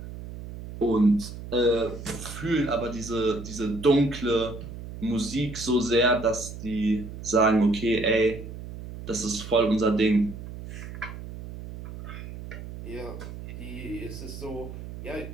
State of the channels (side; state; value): right; noise; hum, 11 dB below the sound